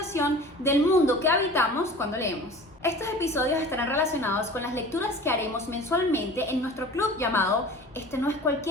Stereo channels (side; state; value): both; normal; correlation 0.41